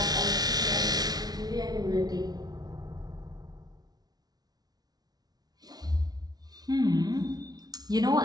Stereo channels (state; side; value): late; left; 0.19 ms